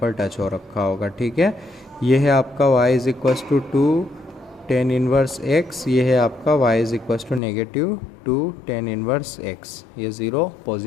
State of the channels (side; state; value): right; drops out; at 7.4 s